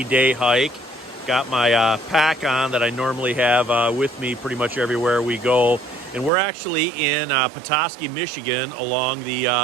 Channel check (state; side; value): drops out; left; at 6.3 s